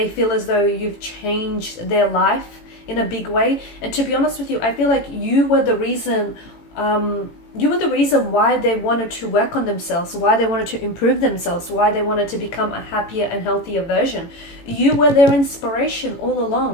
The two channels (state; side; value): late; right; 18 ms